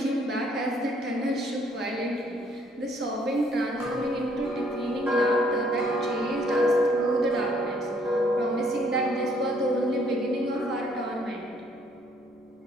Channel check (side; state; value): both; normal; correlation 0.65